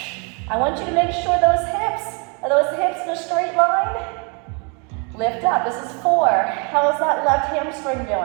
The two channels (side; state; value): left; quieter; 34.9 dB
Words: I want you to make sure are those hips in a straight line? Lift up. This is 4. How's that left hamstring